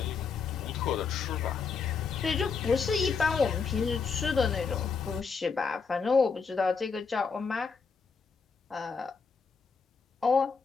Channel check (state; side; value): quieter; right; 5.3 dB